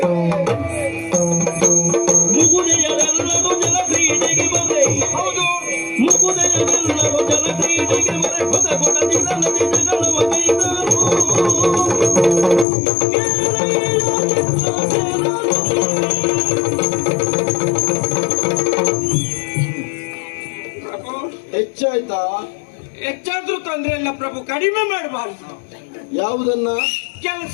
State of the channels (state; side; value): drops out; right; at 12.7 s